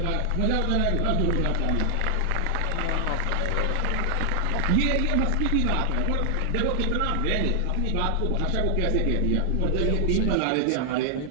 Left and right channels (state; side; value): different; both; correlation 0.00